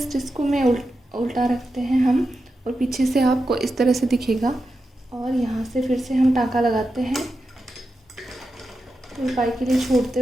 इसको मैं उल्टा रखते हैं हम, और पीछे से आपको इस तरह से दिखेगा, और यहाँ से फिर से हम टाँका लगाते हैं तुरपाई के लिए छोड़ते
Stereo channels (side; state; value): both; normal; correlation 0.89